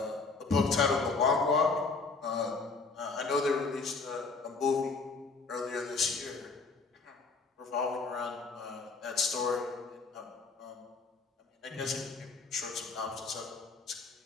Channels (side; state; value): right; quieter; 4.2 dB